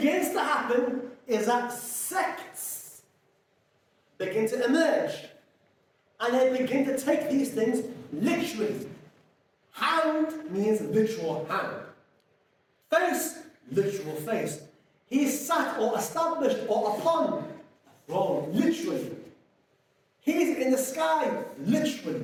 to happen is that sects begin to emerge. And they begin to take these things literally. Hand means literal hand. Face, literal face. He sat or established or upon a throne, literally. He's in the sky,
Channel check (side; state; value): both; identical; correlation 1.00